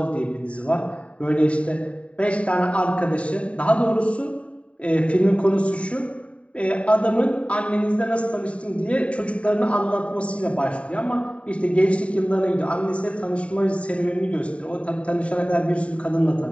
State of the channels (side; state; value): right; late; 0.063 ms